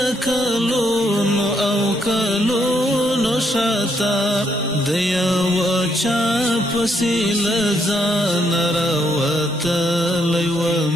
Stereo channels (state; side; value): normal; both; correlation 0.74